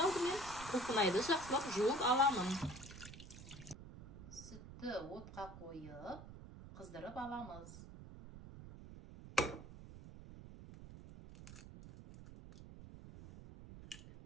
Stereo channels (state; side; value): noise; right; rumble, 14 dB below the sound